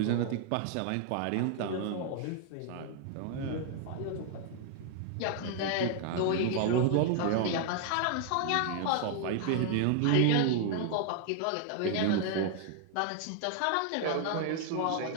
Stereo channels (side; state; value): both; different; correlation 0.00